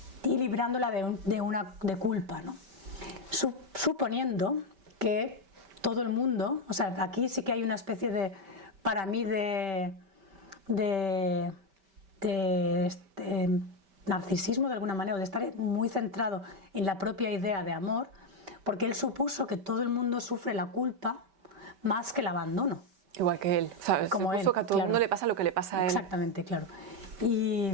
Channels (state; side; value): late; left; 5.1 ms